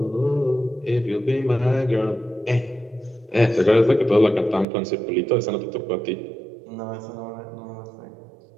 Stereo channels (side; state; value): left; drops out; at 4.7 s